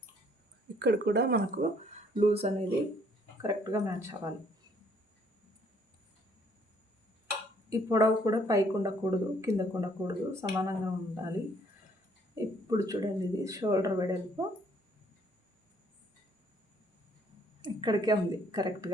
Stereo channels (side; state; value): both; normal; correlation 0.64